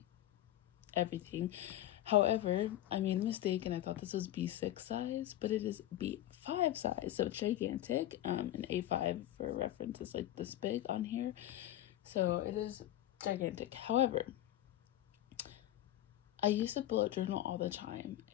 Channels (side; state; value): right; quieter; 13.6 dB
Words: everything. However, I made a mistake and I thought this was B6 size, but it is B5 size, so it's gigantic. An A5 for reference is like this big on here, so it is gigantic. However, I used to bullet journal all the time